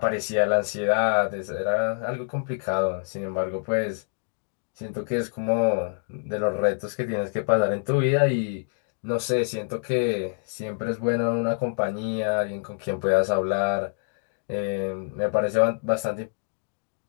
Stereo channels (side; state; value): right; silent; digital silence